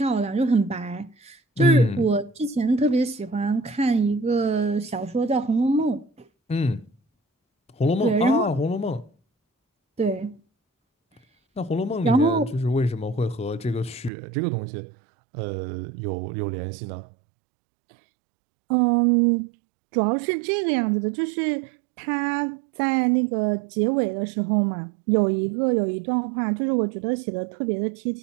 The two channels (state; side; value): drops out; left; at 14.1 s